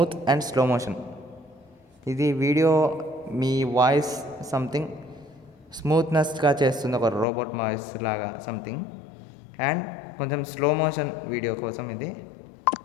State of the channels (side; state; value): right; drops out; at 7.2 s